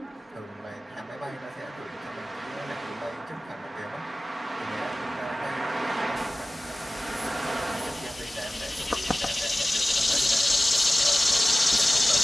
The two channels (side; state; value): both; normal; correlation 0.96